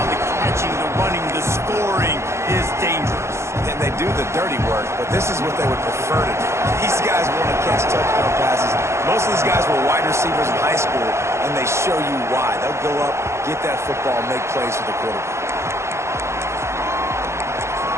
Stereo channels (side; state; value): left; late; 0.13 ms